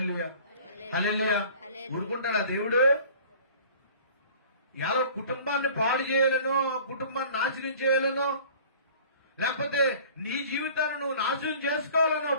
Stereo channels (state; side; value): inverted; both; correlation -0.47